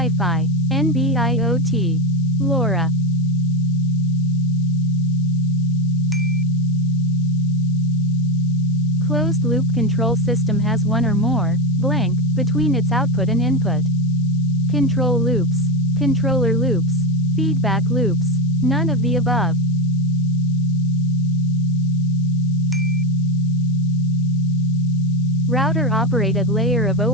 NB-IoT, LoRa. Closed-loop control system has one or more, blank, between its output and input. Control loops, controller loops, feedback loops, none of the above. Router operate at layer of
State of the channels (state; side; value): noise; left; hiss, 29 dB below the sound